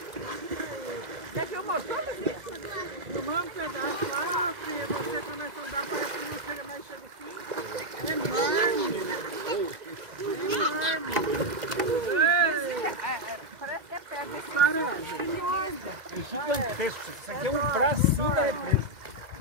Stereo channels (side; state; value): left; late; 1.9 ms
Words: Você filmou tudo, filha? Filmamos um pedaço lá, filha, você começa a andar, parece que não chega mais, chega assim. É enorme. Parece que é pedra. Enorme. É gigantesco. Isso aqui é um bracinho da represa.